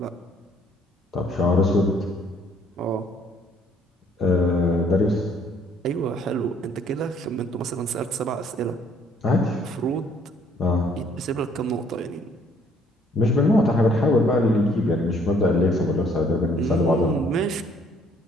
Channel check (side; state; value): both; normal; correlation 0.62